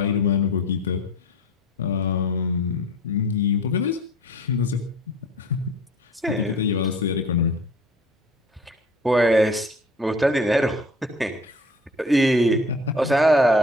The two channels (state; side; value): normal; both; correlation 0.44